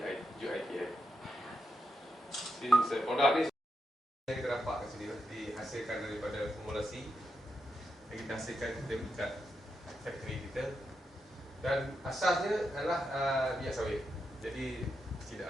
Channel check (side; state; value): both; normal; correlation 0.85